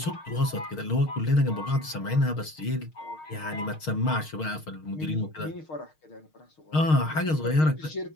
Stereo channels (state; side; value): late; right; 6.4 ms